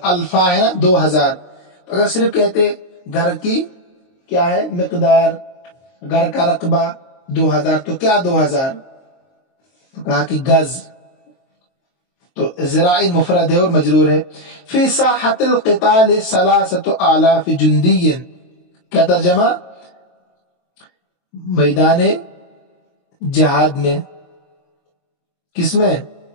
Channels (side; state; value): right; late; 23 ms